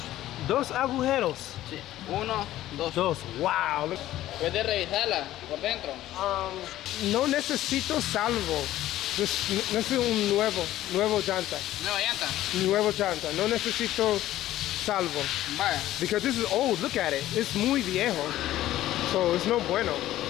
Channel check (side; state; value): right; quieter; 14.2 dB